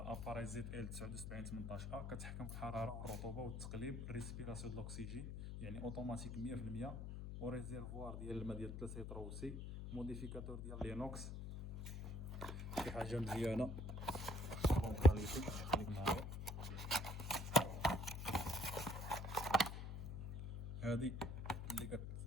اباراي زد ال 79 18 ا، كتحكم في الحراره والرطوبه والتقليب، ريسبيراسيون د الاكسجين، يعني اوتوماتيك 100%، وريزيرفوار ديال الماء ديال 3 لتر وسي، موديفيكاتور ديال لينوكس، شي حاجه مزيانه بون كاليتي. خليك معايا، هذه اللي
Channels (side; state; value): left; noise; hum, 5 dB below the sound